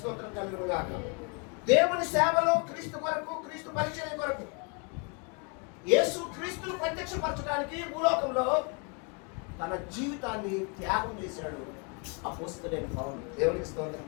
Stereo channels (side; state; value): right; quieter; 34.9 dB